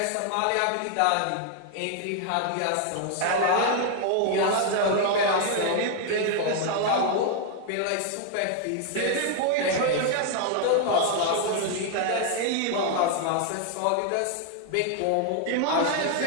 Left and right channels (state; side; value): different; both; correlation 0.00